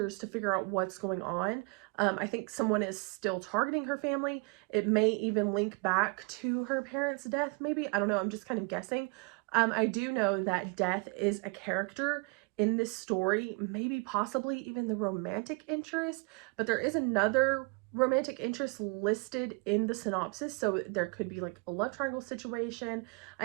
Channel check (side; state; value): left; quieter; 31.6 dB